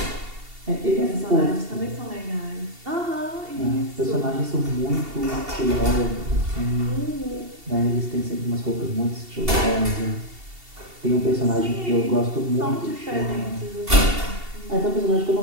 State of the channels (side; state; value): left; late; 2.7 ms